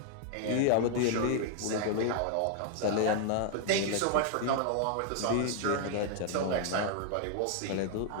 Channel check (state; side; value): different; both; correlation 0.00